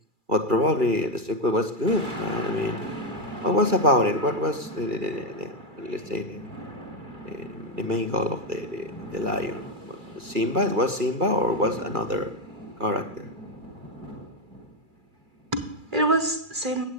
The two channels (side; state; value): left; late; 2.3 ms